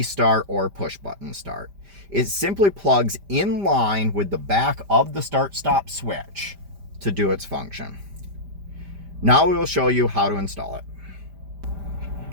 start or push button start. It simply plugs in line with the back of the start-stop switch to do its function. Now we will show you how to install it.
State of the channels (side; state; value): left; late; 5.0 ms